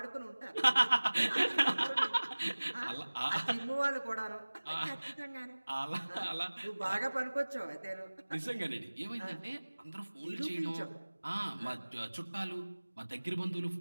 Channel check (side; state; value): both; inverted; correlation -1.00